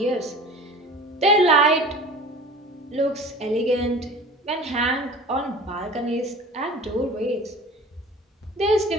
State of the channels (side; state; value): both; normal; correlation 0.40